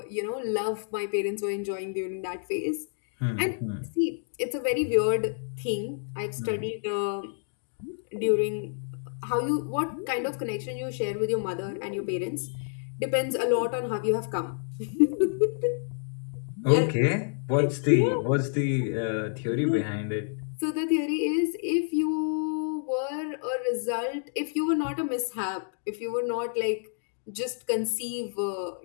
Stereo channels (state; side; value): silent; right; digital silence